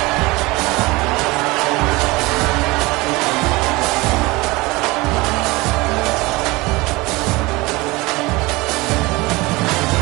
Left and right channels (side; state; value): left; quieter; 22.6 dB